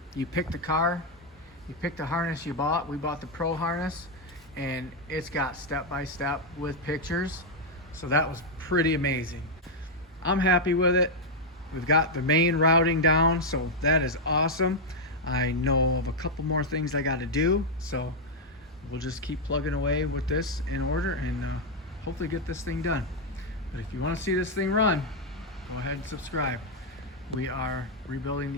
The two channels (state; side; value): normal; both; correlation 0.00